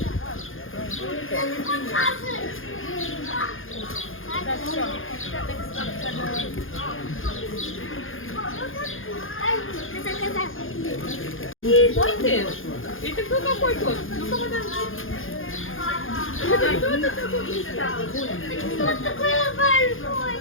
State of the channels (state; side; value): late; right; 0.59 ms